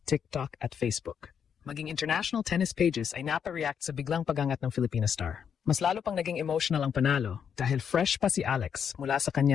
TikTok at Facebook. Maging international tennis pages ay napareact sa biglang pagangat ng Filipina star. Mas lalo pang naging emotional ang panalo dahil fresh pa si Alex mula sa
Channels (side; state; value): right; quieter; 7.6 dB